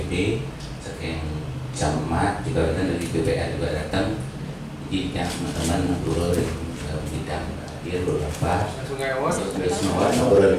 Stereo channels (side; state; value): both; identical; correlation 1.00